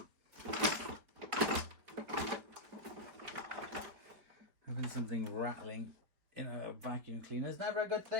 Having something rattling in a vacuum cleaner is never a good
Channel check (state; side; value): late; left; 5.0 ms